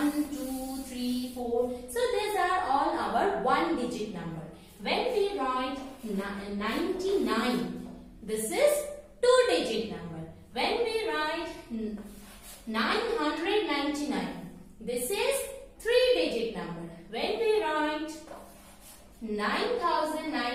2, 3, 4, so these are all our one digit number. When we write 99, this is two digit number. When we write 999, this is three digit number. When we write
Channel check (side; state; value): both; identical; correlation 1.00